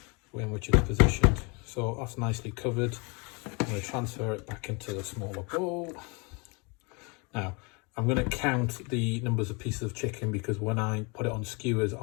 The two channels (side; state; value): right; quieter; 30.4 dB